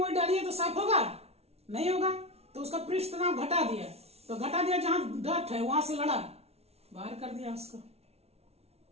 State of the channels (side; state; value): left; late; 0.30 ms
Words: डालिए तो साफ होगा, नहीं होगा, तो उसका पृष्ठ तनाव घटा दिया, तो घटा दिया, जहां डर्ट है वहां से लड़ा, बाहर कर दिया उसको,